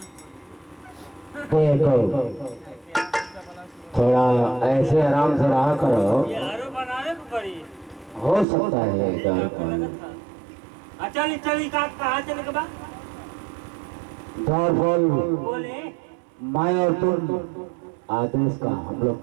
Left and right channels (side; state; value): left; drops out; at 8.5 s